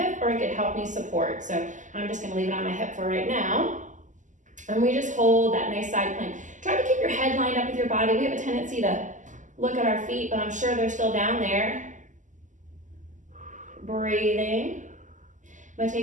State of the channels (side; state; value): left; late; 0.37 ms